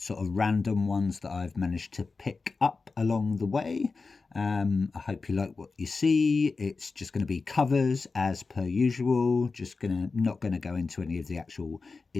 sort of random ones that I've managed to pick up along the way. I hope you like what you see. It's just going to be covers as per usual. Not gonna go into any of the actual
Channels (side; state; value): right; quieter; 4.2 dB